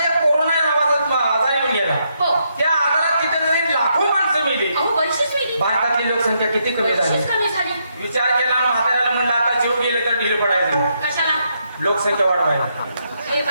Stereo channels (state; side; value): inverted; both; correlation -0.78